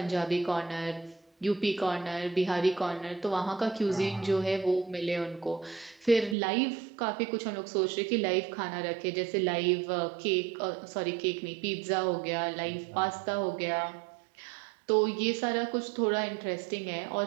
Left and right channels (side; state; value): left; drops out; at 6.4 s